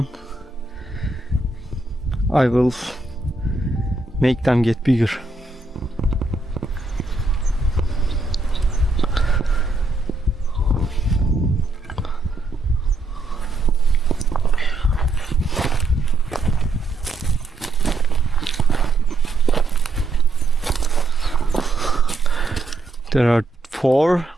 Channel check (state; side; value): quieter; left; 3.1 dB